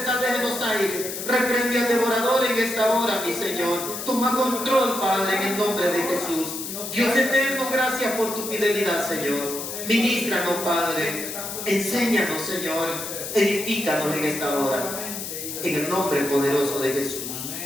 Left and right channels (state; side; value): noise; left; hiss, 7 dB below the sound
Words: de los aires. Reprende al devorador en esta hora, mi Señor. Toma control, Padre, en el nombre de Jesús. Dios eterno, gracias por tu fidelidad, Señor. Ministranos, Padre. Enséñanos, Señor. Edifícanos en esta hora. En el nombre poderoso de Jesús.